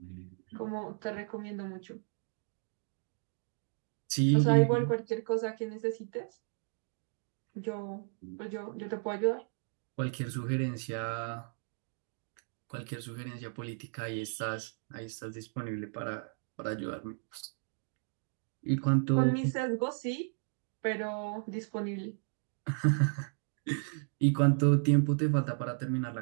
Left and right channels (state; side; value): silent; left; 55 dB below the other